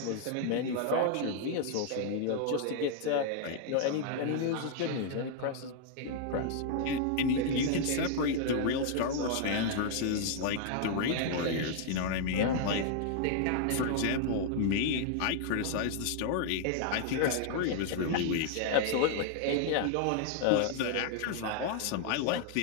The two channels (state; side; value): different; both; correlation 0.00